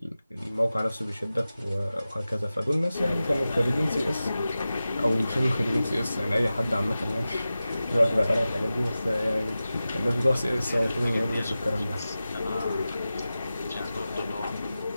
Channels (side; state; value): both; inverted; correlation -0.95